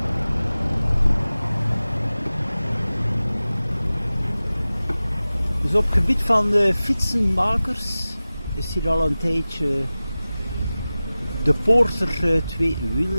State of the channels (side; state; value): both; inverted; correlation -0.97